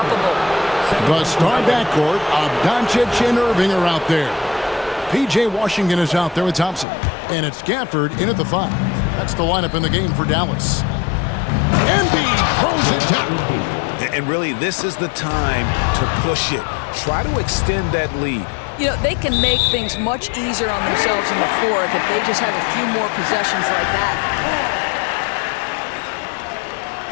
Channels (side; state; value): right; drops out; at 6.9 s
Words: The star backcourt of Doncic and Irving are out there. P.J. Washington is out there with Thompson. And it's Gafford in at the 5. That's the lineup in the game for Dallas. Embiid throws it down. And really, this is the time to push it. Try to extend that lead. You know, they can make things much easier on themselves in the fourth if they just have a few more possessions like that.